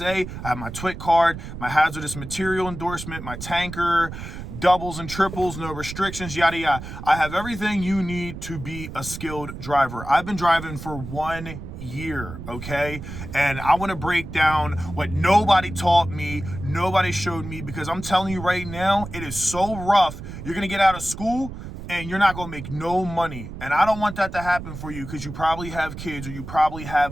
I have my TWIC card, my hazardous material endorsement, my tanker, doubles and triples, no restrictions, yada, yada. I have everything you need to be a skilled driver. I've been driving for 1 year, okay? And I want to break down what nobody taught me, nobody showed me, because I'm telling you right now, it is so rough. You're going to get out of school and you're not going to make no money. And I don't want that to happen for you because you probably have kids or you probably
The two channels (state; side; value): noise; right; rumble, 10 dB below the sound